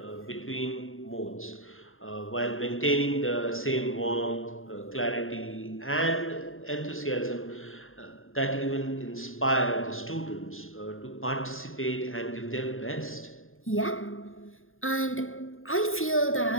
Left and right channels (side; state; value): right; late; 0.60 ms